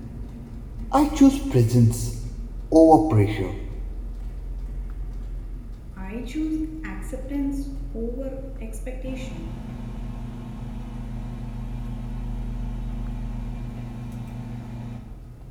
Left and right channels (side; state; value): both; identical; correlation 1.00